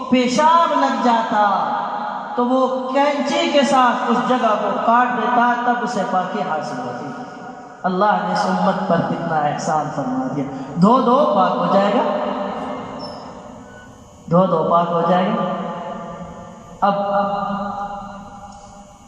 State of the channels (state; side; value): identical; both; correlation 1.00